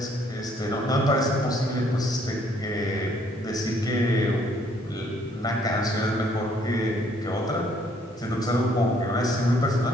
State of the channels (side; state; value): both; normal; correlation 0.65